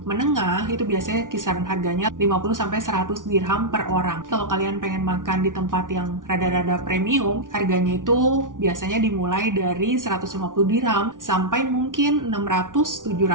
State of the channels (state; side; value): late; left; 0.88 ms